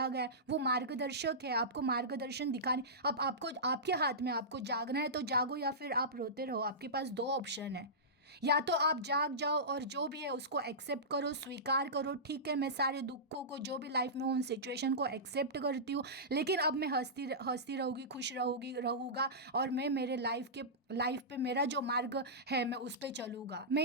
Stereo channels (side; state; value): both; normal; correlation -0.17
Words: गया है, वो मार्गदर्शक है। आपको मार्गदर्शन दिखाने, अब आपको आपके हाथ में, आपको जागना है तो जागो, या फिर आप रोते रहो। आपके पास दो ऑप्शन है, या तो आप जाग जाओ और जो भी है उसको एक्सेप्ट करो, स्वीकार करो। ठीक है, मैं सारे दुखों को, जो भी लाइफ में उन सिचुएशन को एक्सेप्ट करती हूँ, लेकिन अब मैं हंसती रहूँगी, खुश रहूँगा, और मैं मेरे लाइफ पे मेरा जो मार्ग है मैं उस पर चलूँगा।